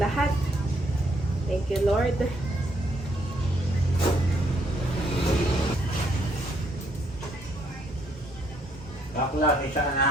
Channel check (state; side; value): normal; both; correlation 0.71